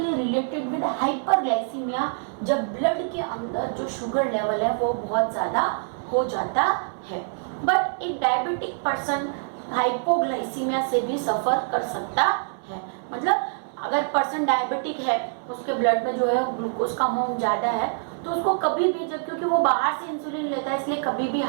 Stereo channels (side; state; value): left; silent; digital silence